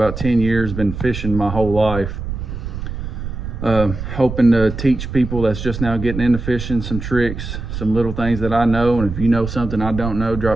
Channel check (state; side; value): noise; right; rumble, 7 dB below the sound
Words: 10 years, been fishing my whole life. Hoping to teach people that's just now getting into fishing some tricks, some little things that I know. And if you know something I don't know,